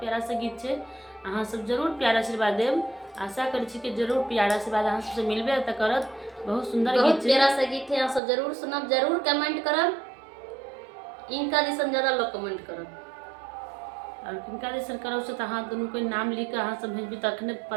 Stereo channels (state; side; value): drops out; left; at 8.2 s